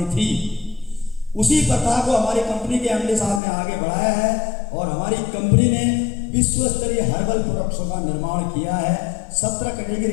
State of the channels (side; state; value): right; drops out; at 3.4 s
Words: थी। उसी प्रथा को हमारी कंपनी के MD साहब ने आगे बढ़ाया है और हमारी कंपनी ने विश्व स्तरीय हर्बल प्रोडक्ट्स का निर्माण किया है। 17 कैटेगरी